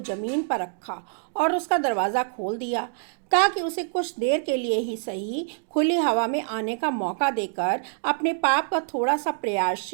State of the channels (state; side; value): silent; left; digital silence